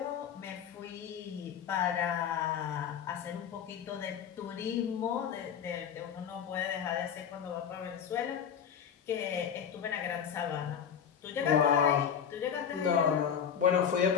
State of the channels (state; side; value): quieter; right; 8.0 dB